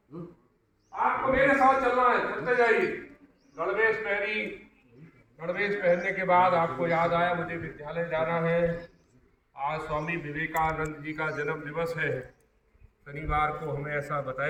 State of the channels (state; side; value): identical; both; correlation 1.00